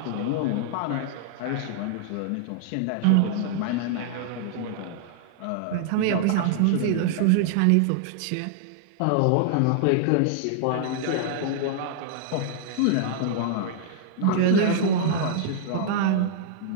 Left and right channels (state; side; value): different; both; correlation -0.01